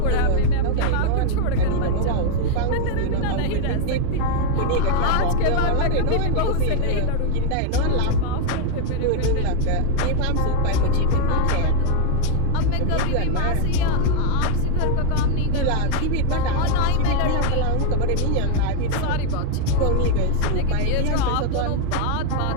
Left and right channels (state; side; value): different; both; correlation 0.01